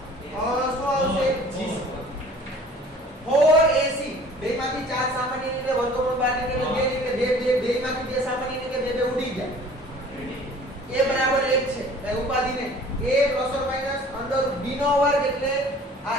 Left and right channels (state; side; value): normal; both; correlation 0.49